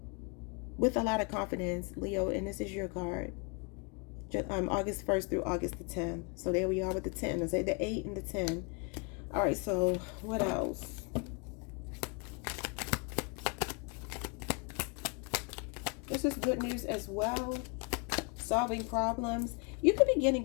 With a lot of confidence, Leo, and this is your card. August 1st through August the 10th. So there we are with the 10. I say the 8 and the 10. All right, so what else? This is good news as well. Solving problems. You could be getting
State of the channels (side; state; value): right; quieter; 33.5 dB